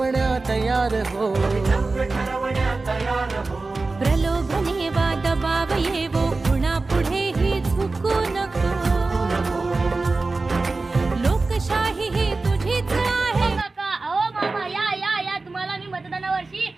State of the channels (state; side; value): quieter; left; 3.6 dB